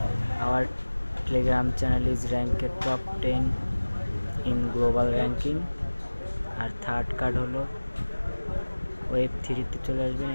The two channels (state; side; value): inverted; both; correlation -1.00